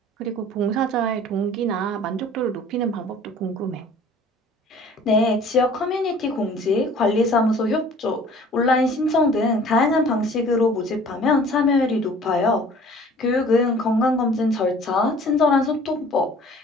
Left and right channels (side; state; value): both; normal; correlation 0.50